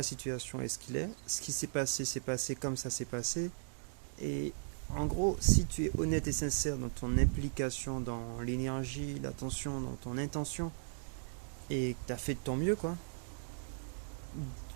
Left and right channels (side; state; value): left; silent; digital silence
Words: situation est ce qu'il est. Ce qui s'est passé comme ça s'est passé. Et en gros, si tu es honnête et sincère dans ton implication, dans l'énergie, l'attention, dans ton intention, et que tu as fait de ton mieux, quoi,